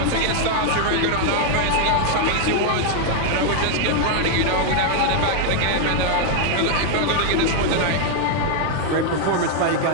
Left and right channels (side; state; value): both; different; correlation 0.00